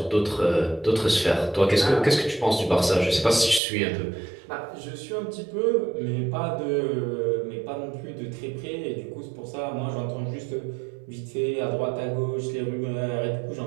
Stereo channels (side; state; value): left; drops out; at 3.6 s